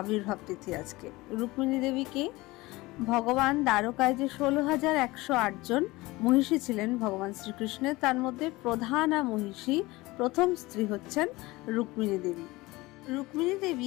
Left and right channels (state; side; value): quieter; right; 20.9 dB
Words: তিথি। আজকে রুক্মিণী দেবীকে ভগবান দ্বারকায় যে 16,108 জন মহিষী ছিলেন ভগবান শ্রীকৃষ্ণের, তার মধ্যে প্রধানা মহিষী প্রথম স্ত্রী হচ্ছেন রুক্মিণী দেবী। রুক্মিণী